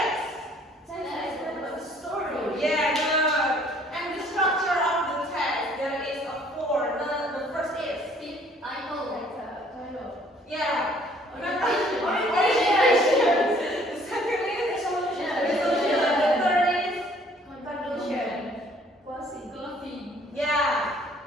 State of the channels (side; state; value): both; normal; correlation 0.59